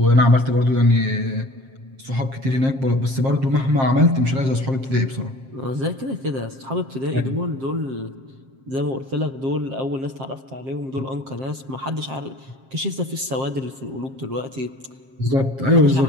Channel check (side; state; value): left; late; 7.5 ms